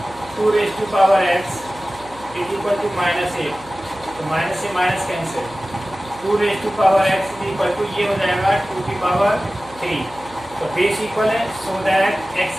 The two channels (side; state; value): right; noise; hum, 22 dB below the sound